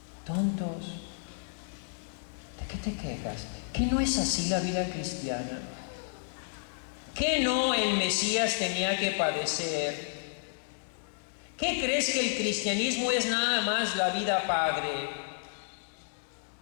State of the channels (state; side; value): silent; right; digital silence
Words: tontos, ¿de qué te quejas? ¿Que no es así la vida cristiana? ¿Que no el Mesías tenía que padecer? ¿Qué crees que el cristianismo es nada más la vida padre?